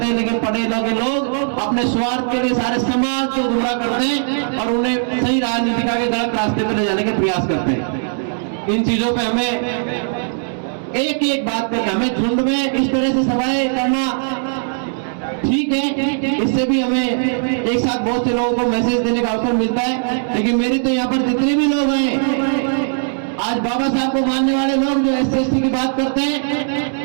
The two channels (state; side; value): silent; left; digital silence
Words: हैं, लेकिन पढ़े लिखे लोग अपने स्वार्थ के लिए सारे समाज को गुमराह करते हैं और उन्हें सही राजनीति के गलत रास्ते पे ले जाने के प्रयास करते हैं। इन चीजों पे हमें एक बात पे, हमें झुंड में इस तरह से सभाएं करना ठीक है, इससे भी हमें एक साथ बहुत से लोगों को मैसेज देने का अवसर मिलता है। लेकिन मेरी तो यहाँ पर जितने भी लोग हैं, आज बाबा साहब को मानने वाले लोग जो एससी एसटी की बात करते